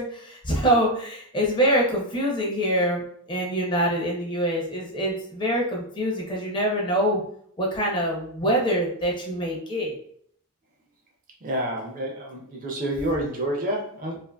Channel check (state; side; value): normal; both; correlation 0.06